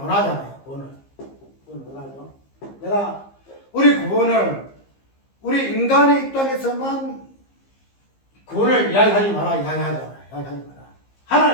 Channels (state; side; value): late; right; 15 ms